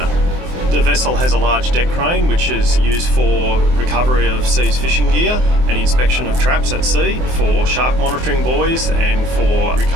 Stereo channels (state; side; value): late; left; 24 ms